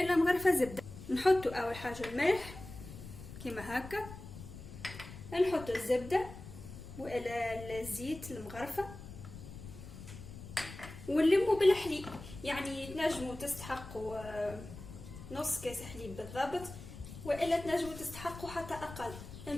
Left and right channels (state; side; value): noise; left; rumble, 13 dB below the sound